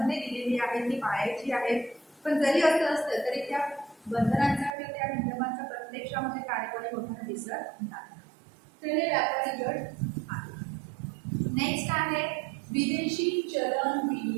दिलेली आहेत, ती पाळायची आहेत. पण जरी असं असतं तरी त्या बंधनांचा किंवा त्या नियमांचा प्रत्यक्षामध्ये कार्यवाही होताना दिसत नाही. तर हे व्यापारी गट आहे. नेक्स्ट आहे विदेशी चलन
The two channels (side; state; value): left; drops out; at 4.7 s